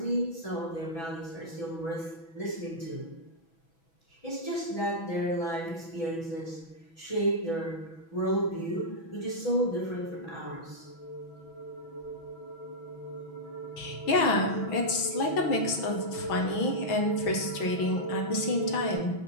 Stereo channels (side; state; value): right; late; 6.1 ms